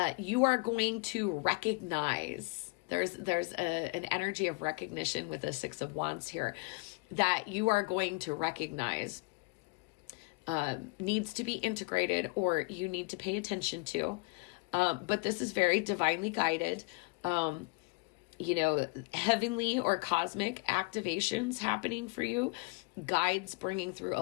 you are going to recognize. There's an energy of recognition with the 6 of Wands here that you are going to recognize needs to be integrated, or you need to pay attention to. But this is very divinely guided. You know, heavenly or cosmic activations happening for you, guides bringing through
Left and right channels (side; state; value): right; quieter; 28.5 dB